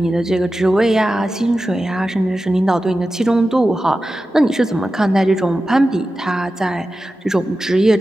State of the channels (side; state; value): both; normal; correlation 0.93